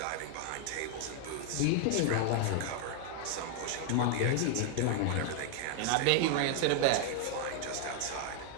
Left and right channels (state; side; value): different; both; correlation 0.00